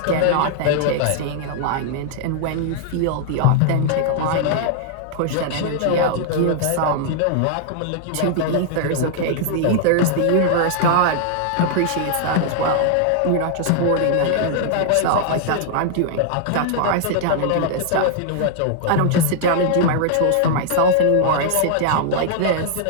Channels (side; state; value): both; different; correlation -0.01